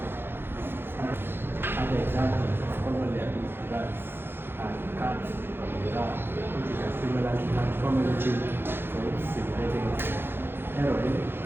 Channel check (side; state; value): left; late; 0.10 ms